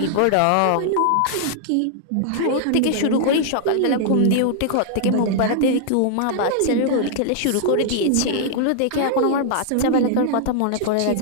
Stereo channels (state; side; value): different; both; correlation -0.01